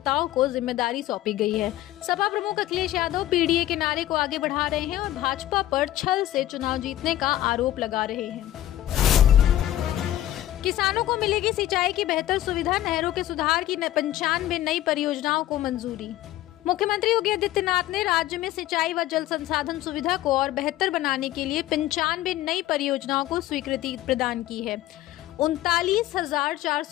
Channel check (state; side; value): quieter; right; 13.8 dB